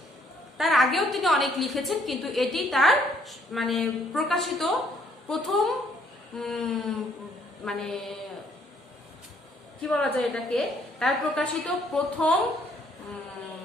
তার আগেও তিনি অনেক লিখেছেন কিন্তু এটি তার মানে প্রকাশিত প্রথম মানে কি বলা যায় এটাকে, তার প্রকাশিত প্রথম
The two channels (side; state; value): both; normal; correlation 0.66